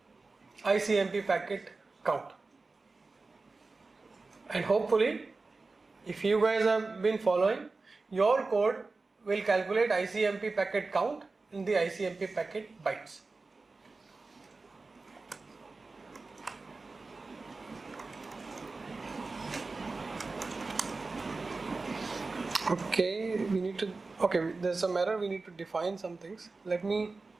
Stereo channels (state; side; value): quieter; left; 3.7 dB